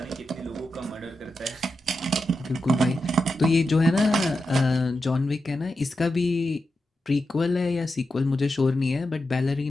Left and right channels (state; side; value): normal; both; correlation 0.89